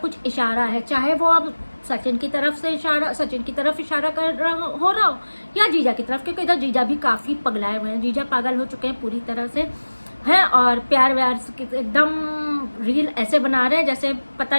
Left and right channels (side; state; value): both; inverted; correlation -1.00